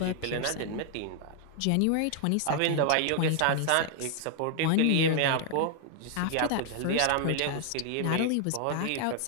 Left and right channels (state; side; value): different; both; correlation 0.00